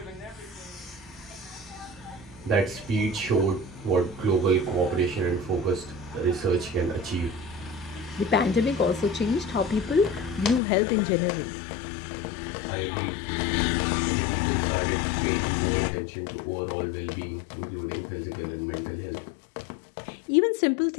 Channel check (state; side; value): drops out; right; at 10.6 s